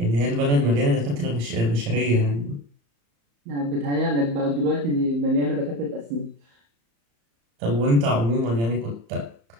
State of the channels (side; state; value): left; late; 35 ms